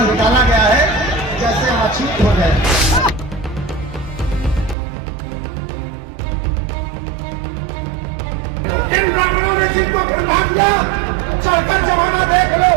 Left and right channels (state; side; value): drops out; left; at 4.8 s